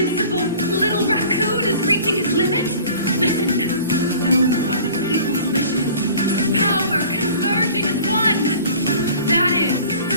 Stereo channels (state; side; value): inverted; both; correlation -0.46